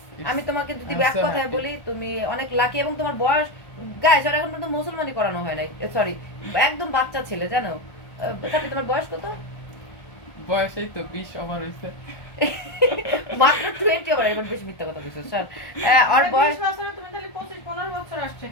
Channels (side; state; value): right; late; 1.4 ms